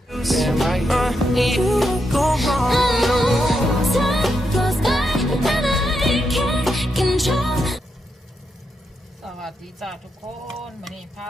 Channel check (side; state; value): both; normal; correlation 0.83